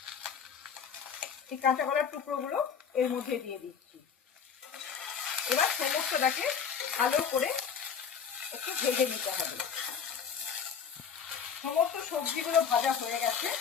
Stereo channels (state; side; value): quieter; right; 6.9 dB